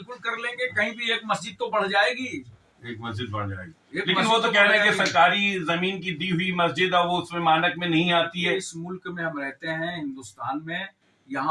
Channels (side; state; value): both; identical; correlation 1.00